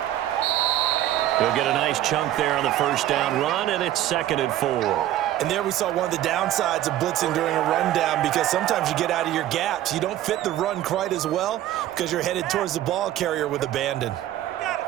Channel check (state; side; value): quieter; left; 13.2 dB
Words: He'll get a nice chunk there on the first down run, and it's 2nd and 4. And there we saw one of the downsides of blitzing during a rundown, because sometimes you get out of your gaps. You don't fit the run quite as well because you're headed towards the ball carrier with abandon.